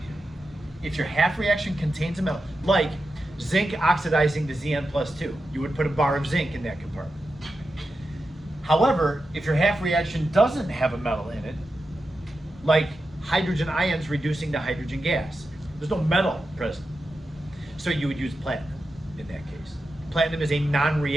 If your half reaction contains a metal, like zinc oxidizing to Zn+2, you would put a bar of zinc in that compartment. However, if your half reaction doesn't have a metal in it, like hydrogen ions reducing to hydrogen gas, there's no metal present. So you would use platinum in that case. Platinum is a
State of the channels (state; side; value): normal; both; correlation 0.90